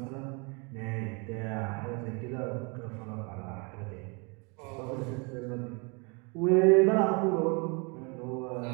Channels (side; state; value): left; quieter; 31.7 dB